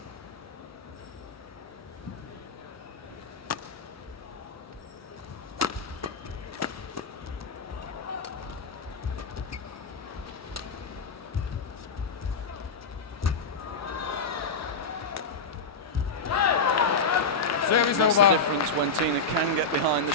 That's the difference when Tine can get behind the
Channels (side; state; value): right; quieter; 3.9 dB